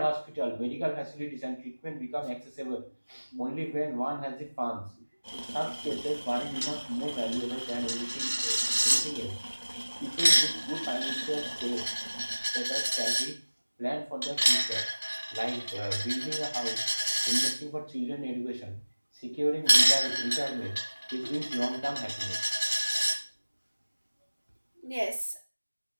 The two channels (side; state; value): both; inverted; correlation -1.00